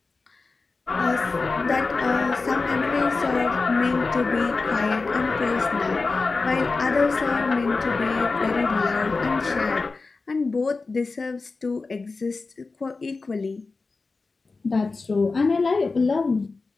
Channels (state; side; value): quieter; right; 3.9 dB